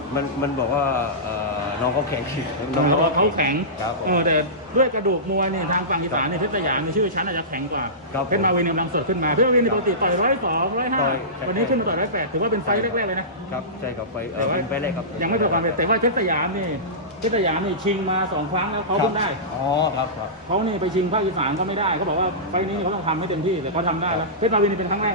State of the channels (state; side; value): normal; both; correlation -0.20